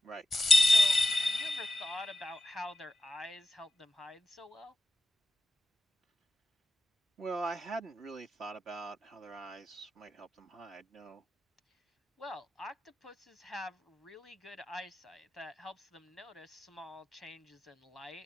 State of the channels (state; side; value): normal; both; correlation 0.90